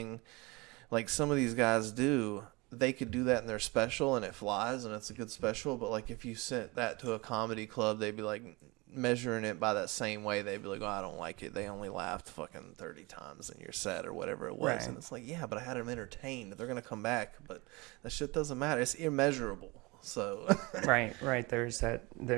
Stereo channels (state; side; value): quieter; left; 25.1 dB